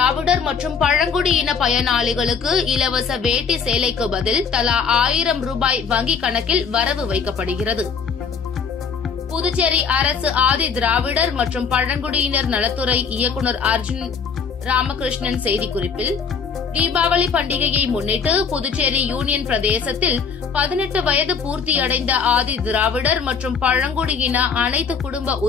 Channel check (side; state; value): right; quieter; 6.0 dB